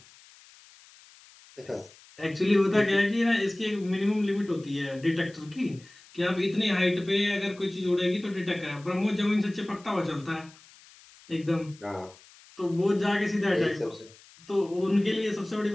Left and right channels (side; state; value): left; noise; hiss, 24 dB below the sound